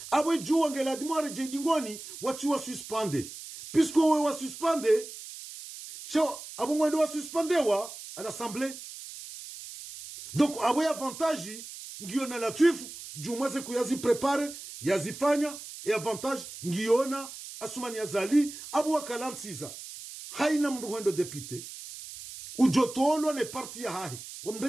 abwe jua ngela dimo wareje dingoni watu wa suspende puisque we wa suspende sho abungwa ndo wa suspendewa à l'assemblée donc abwe avantage ngiona Latif jumwaze kuyazi prepare yazifanya e avantage ngiona Asuma Nazali abu wakalansiza haina mruhendo député ujotolo ne parti ya hahi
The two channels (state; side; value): noise; right; hiss, 12 dB below the sound